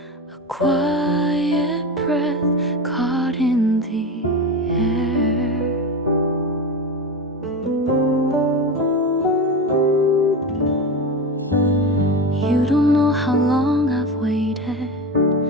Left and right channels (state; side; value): normal; both; correlation 0.23